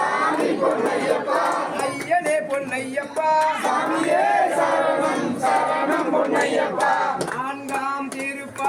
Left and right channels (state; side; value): identical; both; correlation 1.00